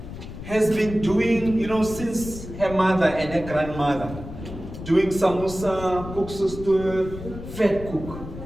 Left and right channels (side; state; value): left; noise; rumble, 11 dB below the sound